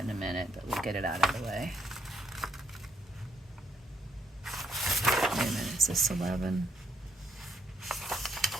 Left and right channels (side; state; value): both; normal; correlation 0.73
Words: a minute, but we'll get it out of the way. Wait a minute, is this 11?